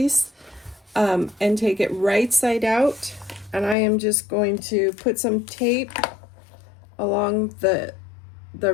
and take it right side out, and I am just going to put some tape along the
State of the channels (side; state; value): right; drops out; at 3.8 s